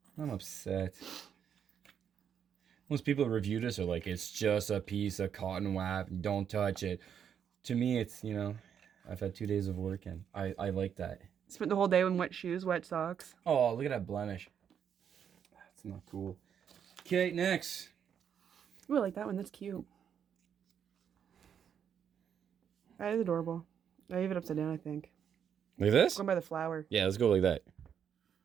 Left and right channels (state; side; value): quieter; left; 8.2 dB